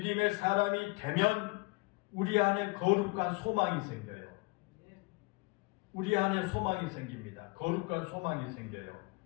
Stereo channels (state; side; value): quieter; right; 26.4 dB